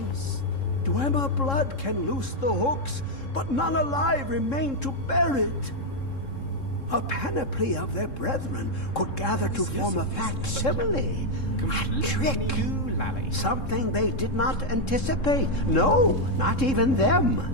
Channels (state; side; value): late; right; 3.7 ms